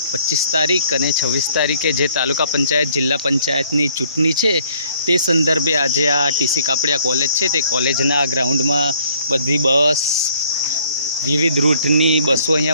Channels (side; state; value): both; inverted; correlation -0.62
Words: 25 તારીખ અને 26 તારીખે જે તાલુકા પંચાયત જિલ્લા પંચાયતની ચૂંટણી છે તે સંદર્ભે આજે આ ટીસી કાપડિયા કોલેજ છે તે કોલેજના ગ્રાઉન્ડમાં બધી બસ વિવિધ રૂટની બસો